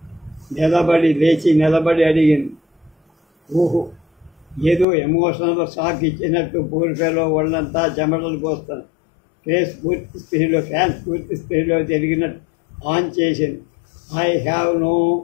లేచి నిలబడి అడిగింది. ఊహు, ఏదో ఎమోషనల్ షాక్ ఇచ్చినట్టు పూర్తిలో ఒళ్ళంతా చెమటలు పోస్తాను. ఫ్యాన్స్ పూర్తి స్పీడ్లో తిరిగినట్టు ఆన్ చేసింది. I have no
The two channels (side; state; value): right; drops out; at 4.9 s